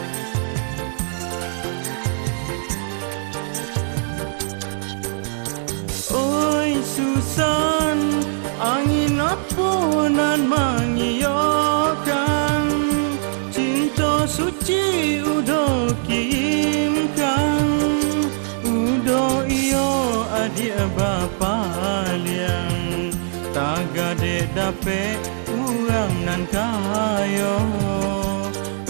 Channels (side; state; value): left; silent; digital silence